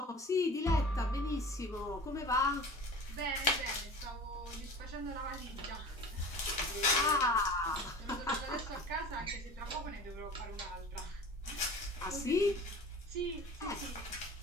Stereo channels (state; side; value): normal; both; correlation 0.39